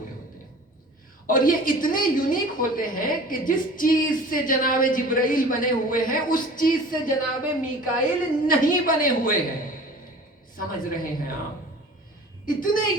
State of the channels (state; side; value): normal; both; correlation 0.43